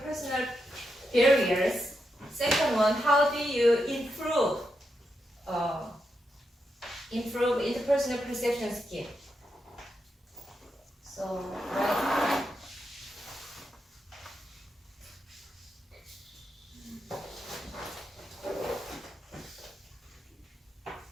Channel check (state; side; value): normal; both; correlation 0.84